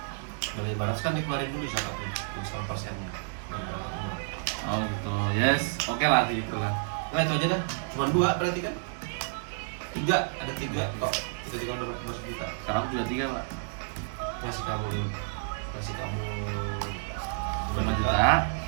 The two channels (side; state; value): left; silent; digital silence